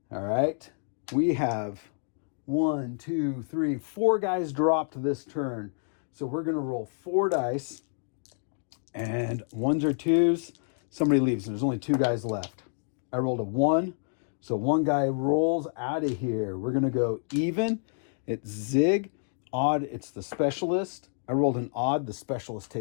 All right. We have 1, 2, 3, 4 guys dropped this turn. So we're going to roll 4 dice, and 1s or 2s. Somebody leaves. There's only 2 guys left. I rolled a 1. So 1 guy rolls out of here. We're going to go even. It's Zig. Odd, it's the specialist. I rolled an odd. The specialist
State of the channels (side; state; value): right; silent; digital silence